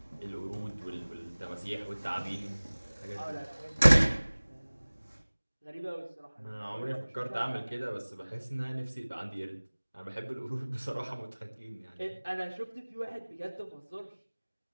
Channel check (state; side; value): inverted; both; correlation -1.00